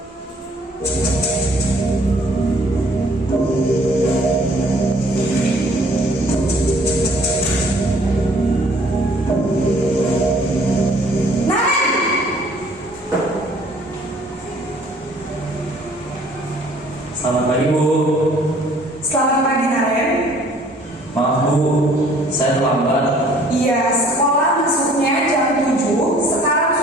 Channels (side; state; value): both; normal; correlation 0.57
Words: Selamat pagi Bu. Selamat pagi Naren. Maaf Bu, saya terlambat. Iya, sekolah masuknya jam 7, sekarang